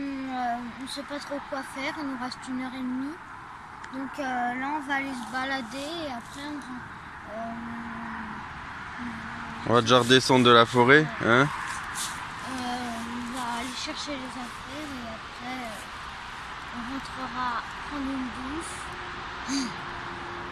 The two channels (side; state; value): both; identical; correlation 1.00